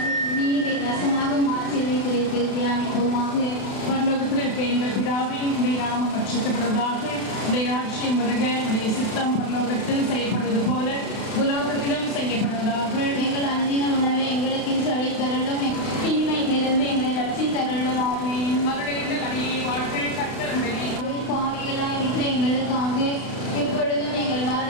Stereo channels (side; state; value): right; late; 32 ms